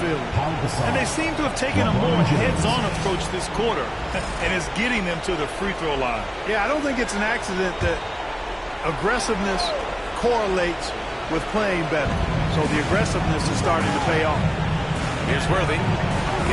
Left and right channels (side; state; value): both; identical; correlation 1.00